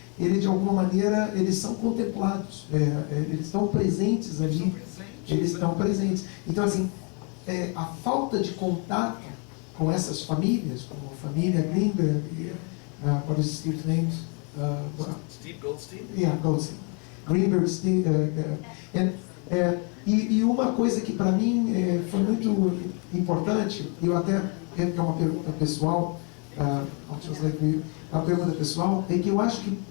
De alguma maneira, eles são contemplados. Eles estão presentes ali. Eles estão presentes. Então, assim, a falta de contato com essas famílias, como a família Greenberg, what is Steve's name? Steve Goldstein? Yeah, Goldstein. Greenberg, Steve, e uma coisa que para mim foi muito importante, eu até que é uma pergunta pessoal, a pergunta pessoal é que eu acho que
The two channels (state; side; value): quieter; right; 36.4 dB